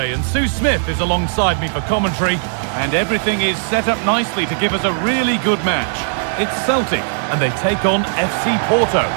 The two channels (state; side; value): silent; left; 58 dB below the other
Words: and Sue Smith is alongside me for commentary, and everything is set up nicely to give us a really good match. It's Celtic and they take on FC Porto.